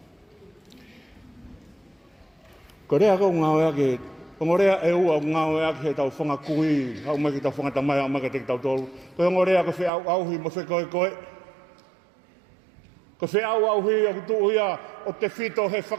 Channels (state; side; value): drops out; left; at 9.9 s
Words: Ko rea kau ngā ue ake, ko rea e ua ngā ue ake he tau whangakui, hau mai ki tau whangatamai, hau mai ki te tau tolu. Ko rea ko whi au auhi mo whi koe. Ko whi au auhi o kutu ia o te whito he